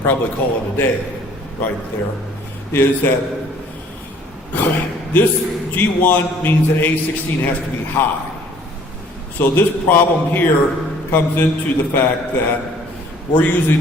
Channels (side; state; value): both; normal; correlation 0.56